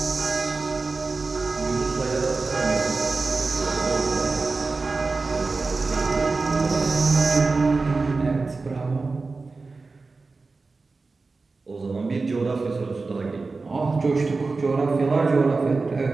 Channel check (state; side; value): quieter; left; 3.9 dB